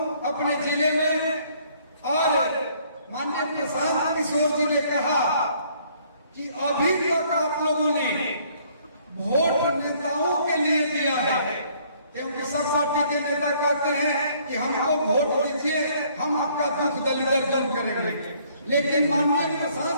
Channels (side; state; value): both; inverted; correlation -0.62